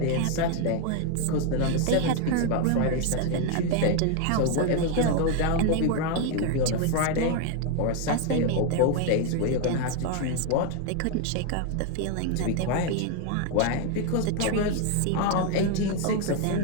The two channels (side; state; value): both; different; correlation 0.01